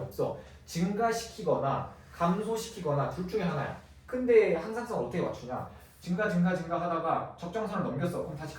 증가시키거나 감소시키거나 둘 중에 하나야. 근데 항상성 어떻게 맞추냐? 증가 하다가 적정선을 넘겼어. 그럼 다시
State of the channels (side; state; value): both; identical; correlation 1.00